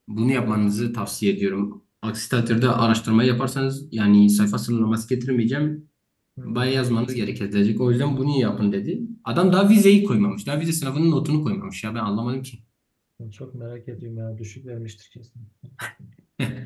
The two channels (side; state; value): both; identical; correlation 1.00